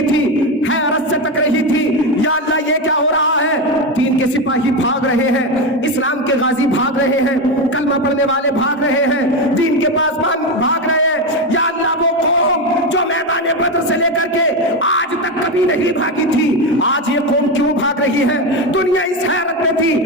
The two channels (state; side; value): normal; both; correlation 0.14